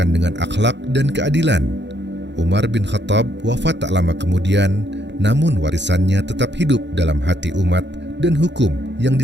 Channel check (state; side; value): late; left; 0.52 ms